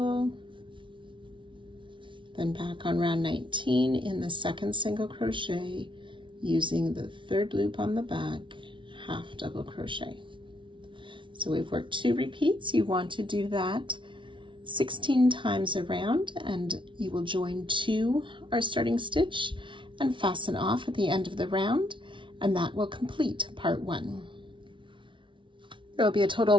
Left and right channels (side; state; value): left; late; 0.24 ms